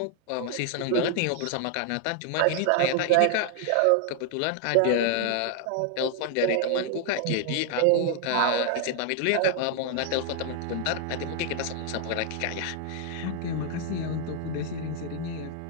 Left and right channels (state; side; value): different; both; correlation 0.00